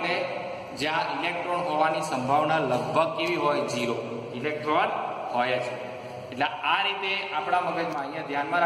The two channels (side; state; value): both; identical; correlation 1.00